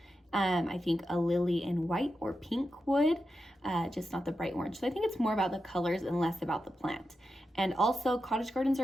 I think a lily in white or pink would, just not the bright orange. So I think it's more about the colors and less about the plant. And also, cottage gardens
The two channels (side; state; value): both; normal; correlation 0.89